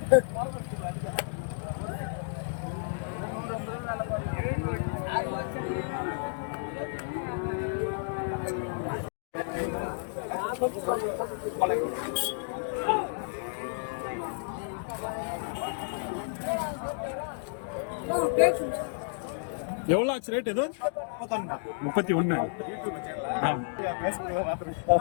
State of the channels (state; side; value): silent; right; digital silence